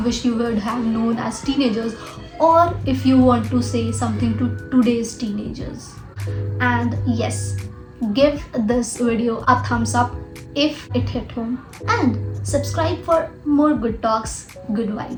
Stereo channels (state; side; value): identical; both; correlation 1.00